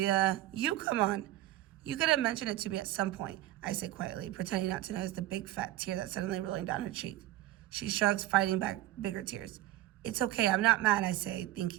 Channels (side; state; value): left; quieter; 15.1 dB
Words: You come on. You could have mentioned it to me at some point, I say quietly, pretending not to notice the big fat tear that's suddenly rolling down her cheek. She shrugs, fighting back bigger tears. It's okay, I'm not mad, I say,